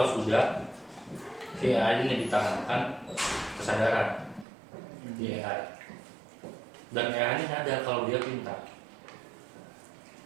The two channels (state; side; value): drops out; left; at 4.5 s